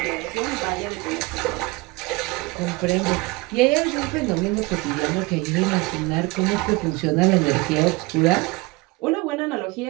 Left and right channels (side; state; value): left; quieter; 23.8 dB